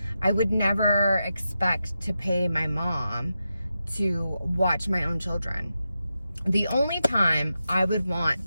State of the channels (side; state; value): both; inverted; correlation -0.89